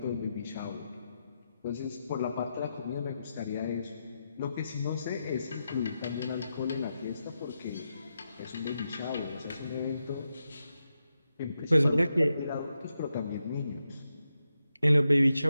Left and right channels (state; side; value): inverted; both; correlation -0.87